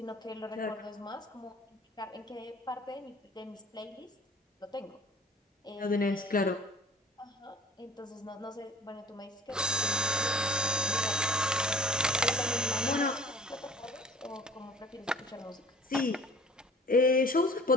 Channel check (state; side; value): normal; both; correlation 0.46